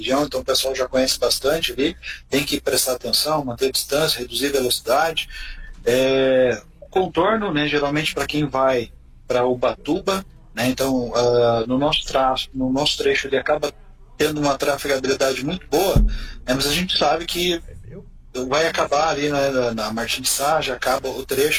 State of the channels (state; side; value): identical; both; correlation 1.00